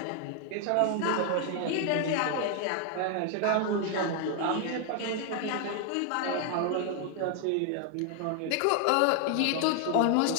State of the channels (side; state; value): both; different; correlation 0.00